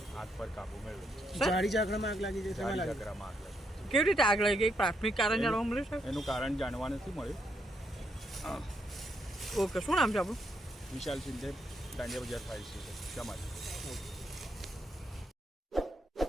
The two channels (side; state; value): both; normal; correlation 0.77